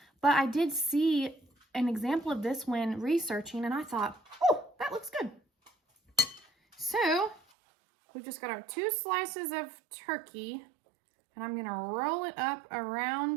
but I did see an example of this when researching, and I thought, oh, that looks good. So, we've just got our 2 slices of turkey, and I'm gonna roll it up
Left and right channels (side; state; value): left; drops out; at 7.4 s